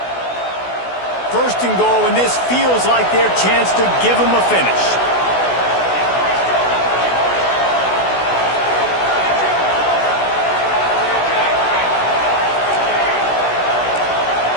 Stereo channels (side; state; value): right; late; 16 ms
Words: 1st and goal, and this feels like their chance to give them a finish.